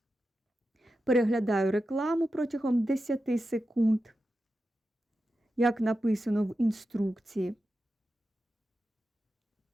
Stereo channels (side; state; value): both; normal; correlation 0.90